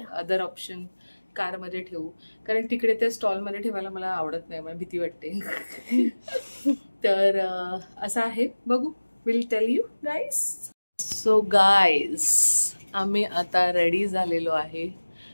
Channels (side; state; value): both; inverted; correlation -1.00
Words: Other option. कार मध्ये ठेवू कारण तिकडे त्या स्टॉल मध्ये ठेवायला मला आवडत नाही, मला भीती वाटते. तर असं आहे, बघू. Will tell you guys. So guys आम्ही आता रेडी झालेलो आहे.